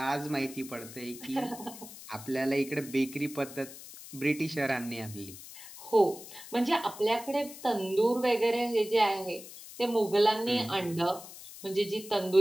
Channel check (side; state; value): left; noise; hiss, 15 dB below the sound